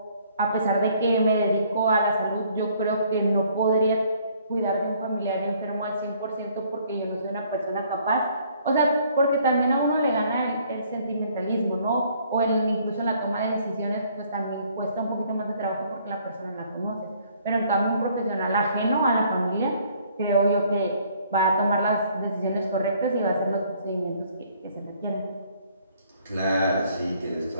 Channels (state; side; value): inverted; both; correlation -0.62